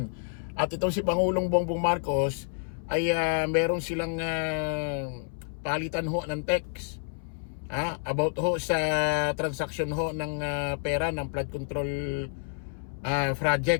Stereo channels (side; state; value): right; silent; 59 dB below the other